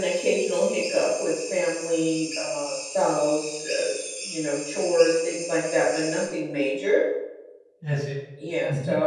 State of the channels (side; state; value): both; identical; correlation 1.00